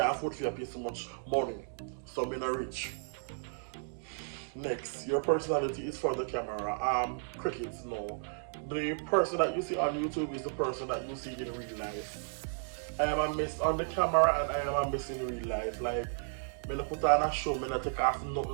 afford to pay so much money. So I'm not rich. Next, your personality is for the camera. Crickets, no. The person that you see on YouTube is the person that you see in real life. I am a mess on the camera and I am a mess in real life. Like, when I put on a show, when I take off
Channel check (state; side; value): silent; left; digital silence